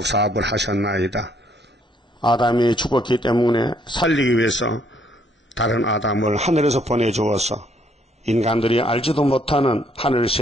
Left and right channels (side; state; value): both; normal; correlation 0.68